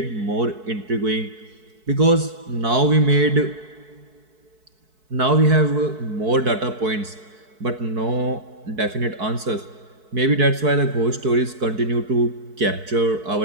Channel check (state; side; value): late; left; 4.6 ms